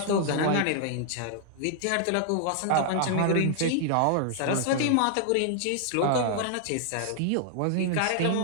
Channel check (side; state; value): both; different; correlation -0.01